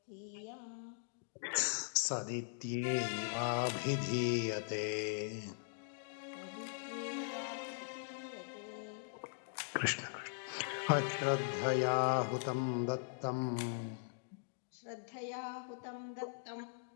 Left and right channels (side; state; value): right; silent; digital silence